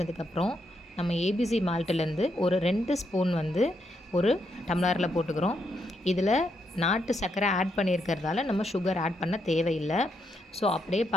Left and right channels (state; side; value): normal; both; correlation 0.79